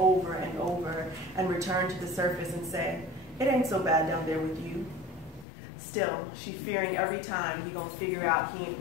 and over and returned to the surface and said, it ain't so bad down there with you. Still, she fearing every time he gonna figure out he ain't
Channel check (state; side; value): drops out; right; at 5.5 s